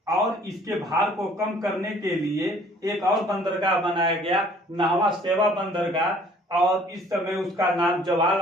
और इसके भार को कम करने के लिए एक और बंदरगाह बनाया गया, नाहवा सेवा बंदरगाह, और इस समय उसका नाम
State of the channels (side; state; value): both; normal; correlation 0.55